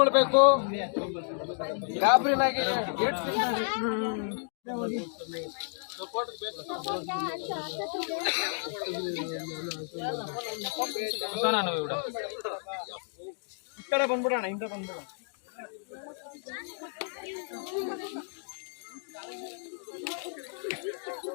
ಗಾಬರಿನಾಗಿ ಈ ಕಡೆ ಬಂದ್ಬಿಡೋಣ, ಹಿಂದೆ ಬಂದ್ಬಿಡೋಣ.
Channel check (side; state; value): right; silent; digital silence